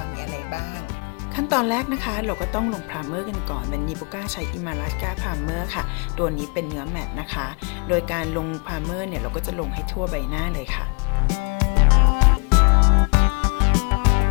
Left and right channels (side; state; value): right; quieter; 31.2 dB